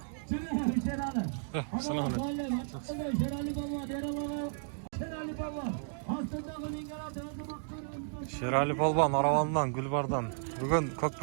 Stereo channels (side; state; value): left; silent; digital silence